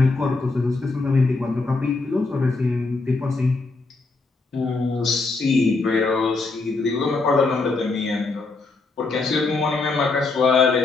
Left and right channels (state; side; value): quieter; right; 3.7 dB